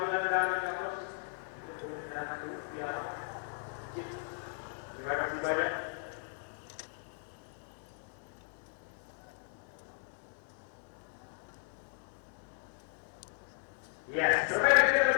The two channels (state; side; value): silent; right; digital silence